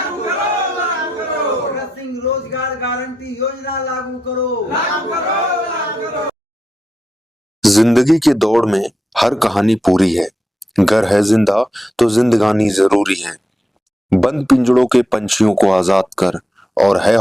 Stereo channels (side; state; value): both; normal; correlation 0.85